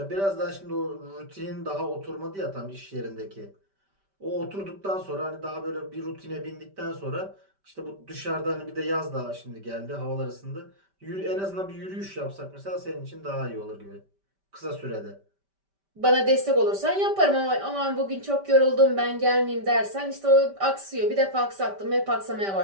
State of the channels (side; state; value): left; late; 5.1 ms